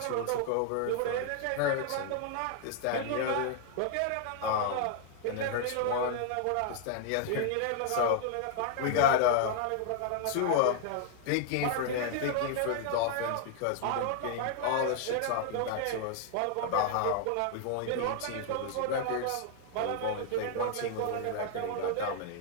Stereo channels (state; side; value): different; both; correlation 0.00